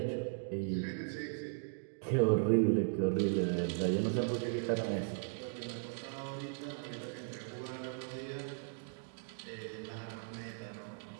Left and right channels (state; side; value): silent; left; digital silence